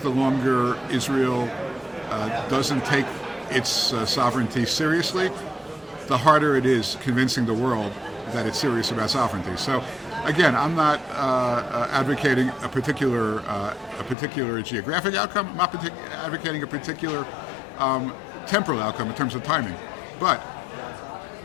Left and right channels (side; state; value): right; drops out; at 14.2 s